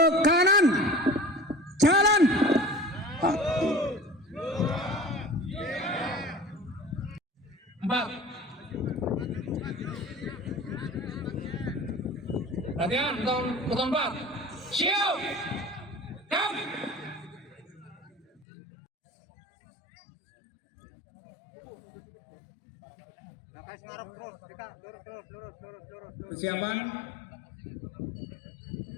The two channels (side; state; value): right; drops out; at 18.4 s